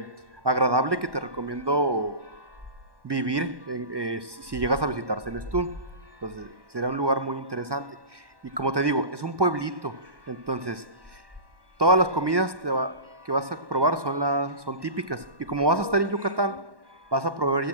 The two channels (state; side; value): late; left; 1.1 ms